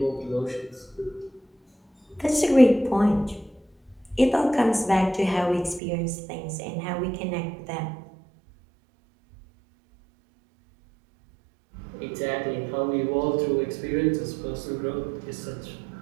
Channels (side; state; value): left; drops out; at 5.8 s